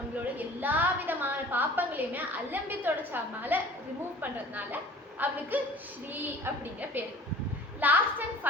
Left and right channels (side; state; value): both; normal; correlation 0.46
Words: எல்லா விதமான பாப்பங்களையுமே அலம்பி தொடச்சாமல ரிமூவ் பண்றதுனால அவளுக்கு ஸ்ரீ அப்படிங்கிற பேரு. லாஸ்ட் அண்ட்